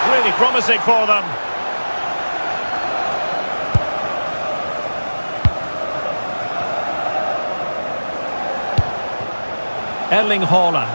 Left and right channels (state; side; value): inverted; both; correlation -1.00